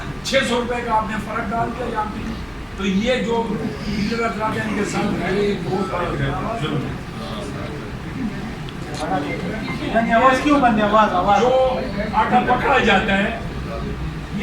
600 روپے کا آپ نے فرق ڈال دیا یہاں پہ۔ تو یہ جو ڈیلر افراد ہیں ان کے ساتھ ظلم ہے۔ جو آٹا پکڑا جاتا ہے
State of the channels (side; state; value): both; identical; correlation 1.00